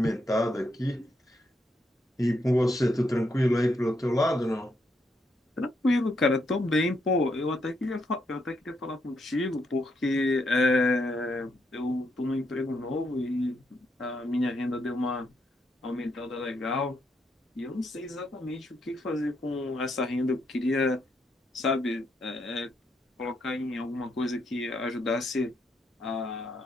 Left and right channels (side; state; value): both; normal; correlation 0.78